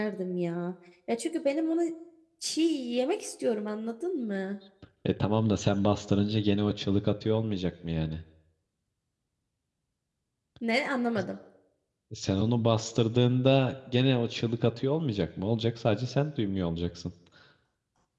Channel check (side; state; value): both; identical; correlation 1.00